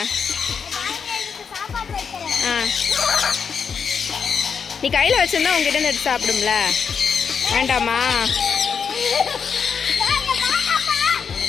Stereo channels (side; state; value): right; quieter; 6.4 dB